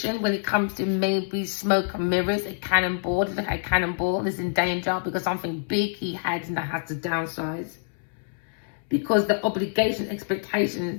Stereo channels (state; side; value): silent; right; 59 dB below the other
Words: when it comes to maybe smoke and mirrors, a cannonball. A cannonball is in danger because something big he had and that has to downsize. Because the obligation,